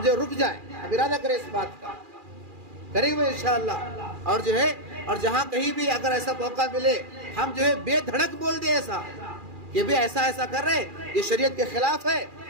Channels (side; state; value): left; late; 2.4 ms